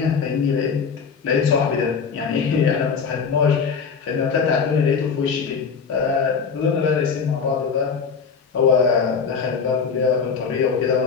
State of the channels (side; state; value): right; quieter; 5.8 dB